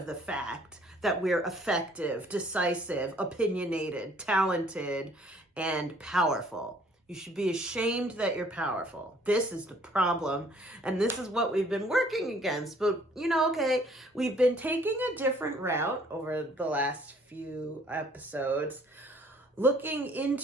the fact that we're effective, decisive, opinionated, talented, and powerful. You should be ashamed that you're powerful. This is the problem, and this is what we've been working against. But, we've been taking a different route over the last few episodes, looking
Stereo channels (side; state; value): both; normal; correlation 0.59